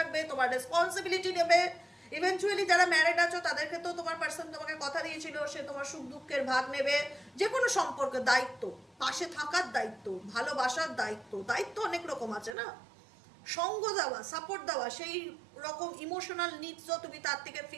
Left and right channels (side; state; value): left; drops out; at 12.6 s